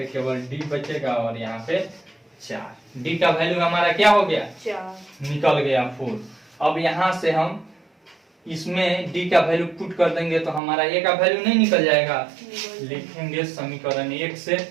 केवल d बचेगा और यहाँ पे 4। d का वैल्यू हमारा क्या हो गया, 4 निकल गया 4। अब यहाँ से हम इसमें d का वैल्यू पुट कर देंगे तो हमारा a का वैल्यू नहीं निकल जाएगा। लिखेंगे समीकरण 1 से,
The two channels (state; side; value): drops out; left; at 10.6 s